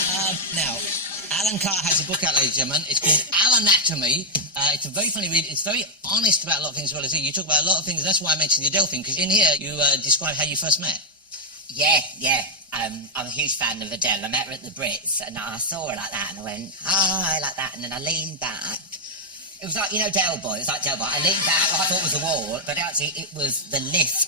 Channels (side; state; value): both; normal; correlation -0.01